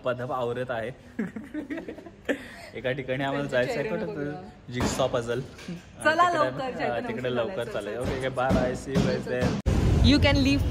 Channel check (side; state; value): both; identical; correlation 1.00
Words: आवरत आहे. एका ठिकाणी आम्हाला जायचं आहे कुठं जिग्सॉ पझल. चला लवकर तिकडे लवकर चालेल. Okay bye. See you guys there. You can leave